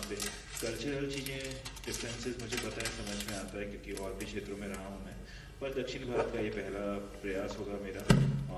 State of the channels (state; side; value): identical; both; correlation 1.00